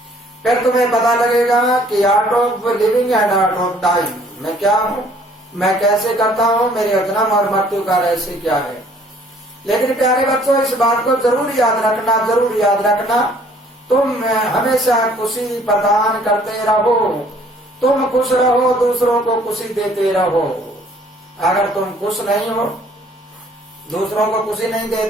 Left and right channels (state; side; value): normal; both; correlation 0.58